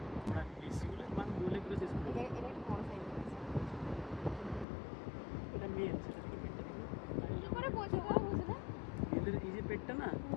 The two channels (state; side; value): drops out; right; at 4.7 s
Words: ওরা বেশিগুলো মান বলে করে চেষ্টা করছি এটা একটু বড় সাইজ এটা মেল সেটা থেকে পেটটা দেখো কি করে বোঝো গো বুঝো না মেলের এই যে পেটটা না